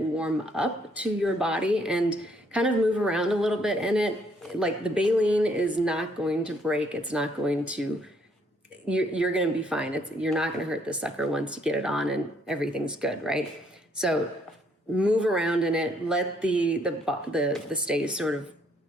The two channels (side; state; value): both; normal; correlation 0.68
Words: up to your body and kind of move around a little bit in it. Like the baleen is not going to break. It's not going to, you're going to be fine. You're not going to hurt this sucker once you get it on and everything's good, right? So move around in it. Let the stays sort of